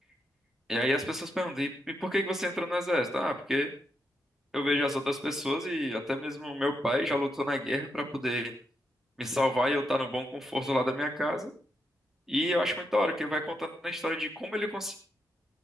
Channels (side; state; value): both; normal; correlation 0.82